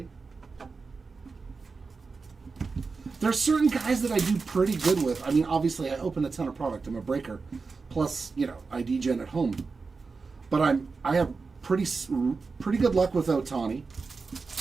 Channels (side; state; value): left; quieter; 4.5 dB